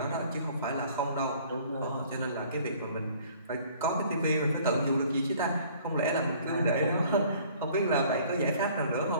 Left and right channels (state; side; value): inverted; both; correlation -0.54